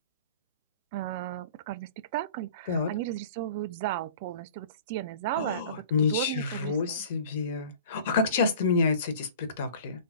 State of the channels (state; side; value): inverted; both; correlation -0.42